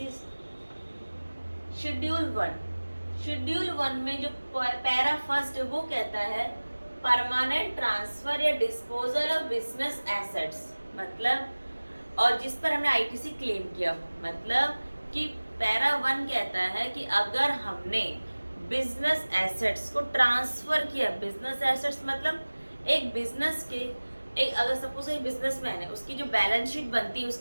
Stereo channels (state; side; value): inverted; both; correlation -1.00